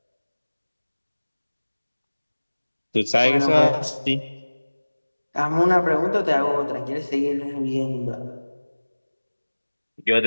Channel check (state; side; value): inverted; both; correlation -1.00